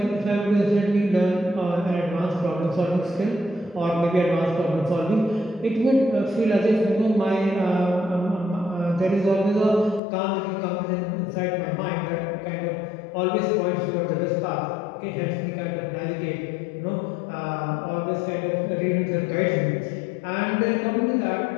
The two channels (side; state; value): right; drops out; at 10.0 s